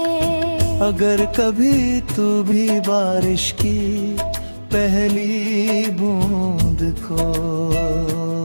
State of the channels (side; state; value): both; inverted; correlation -1.00